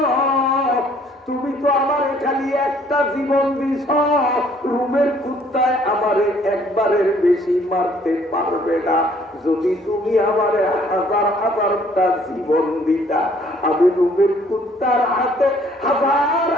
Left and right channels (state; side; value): normal; both; correlation 0.61